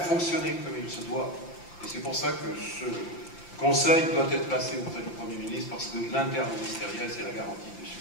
comme il se doit. Et c'est pour ça que ce Conseil doit être placé auprès du Premier ministre, parce que l'interministériel, c'est la garantie du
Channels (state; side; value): late; right; 5.8 ms